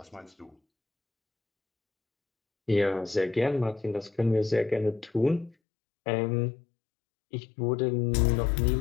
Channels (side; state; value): right; drops out; at 5.6 s